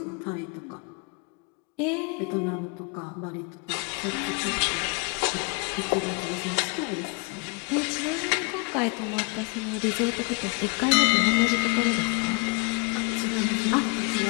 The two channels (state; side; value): quieter; right; 29.6 dB